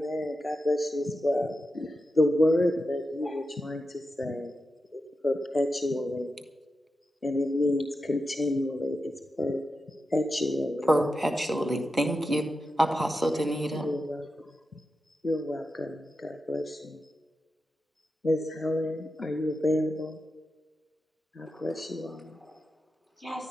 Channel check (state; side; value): normal; both; correlation 0.90